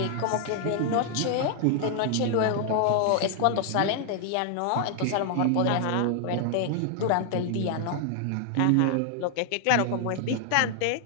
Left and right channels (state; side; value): different; both; correlation 0.00